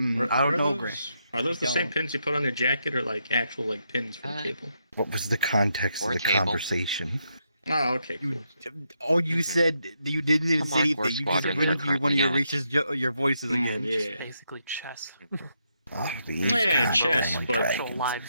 don't know, Gray. Are those the Don't. same pins you put on your jacket, or like actual like pins for the table? What was the context of Or the table. conversation? Oh, okay. Cool. Oh, you said you didn't even Come say on, anything. War You just Squadrons went are into one of currently your on. racist your voices again. Yeah. It's basically chess. Oh, the Yeah, goddamn chess, but Actual dragons.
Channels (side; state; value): both; inverted; correlation -0.80